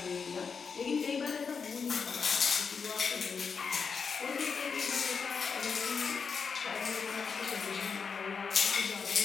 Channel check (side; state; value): right; quieter; 5.7 dB